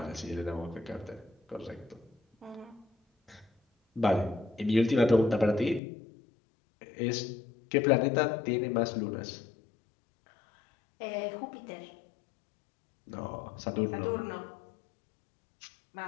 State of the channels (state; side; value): drops out; right; at 5.8 s